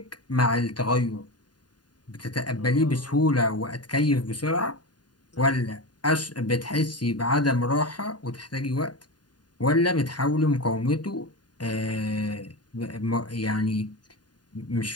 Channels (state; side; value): late; right; 0.70 ms